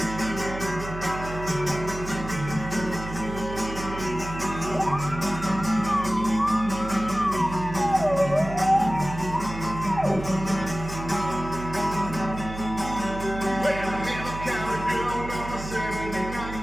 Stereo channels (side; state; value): right; noise; hum, 9 dB below the sound